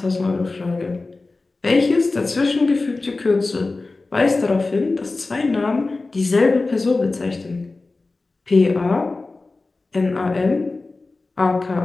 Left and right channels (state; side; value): quieter; right; 3.5 dB